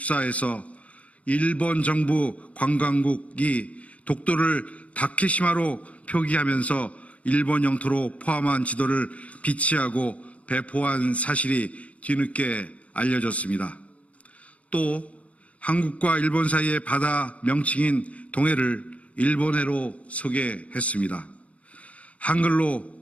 일본 정부 관광국이 독도를 다케시마로 표기하면서 일본 영토로 포함한 지도를 비치하고 배포한 사실이 뒤늦게 알려졌습니다. 또 한국과 일본 사이의 바다 명칭인 동해를 일본해로 소개했습니다.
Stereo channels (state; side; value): late; right; 0.065 ms